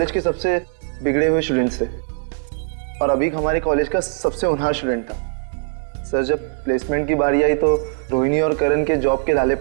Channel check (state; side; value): silent; left; digital silence